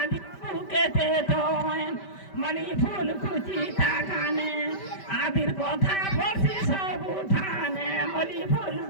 বাবুকে দে দোয়েন মনি ফুল কুচি তাকানে আদির কথা বলছি সব উঠানে মনি ফুল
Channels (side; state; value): right; late; 5.1 ms